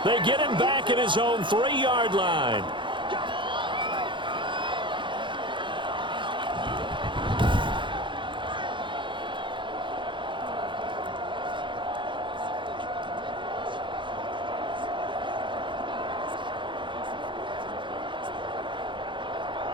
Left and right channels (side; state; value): left; late; 0.23 ms